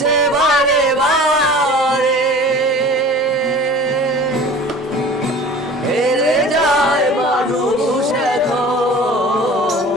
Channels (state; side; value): normal; both; correlation 0.42